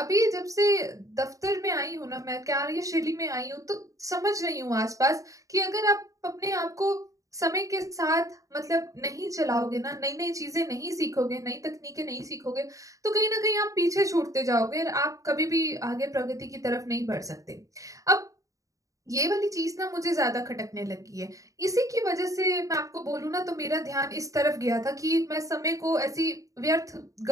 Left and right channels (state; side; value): late; left; 0.16 ms